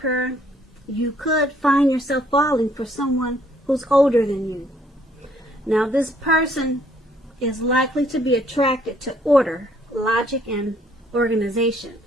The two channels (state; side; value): normal; both; correlation 0.65